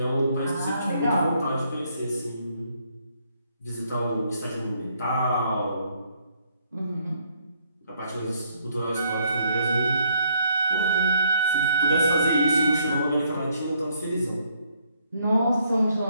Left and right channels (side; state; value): both; inverted; correlation -0.69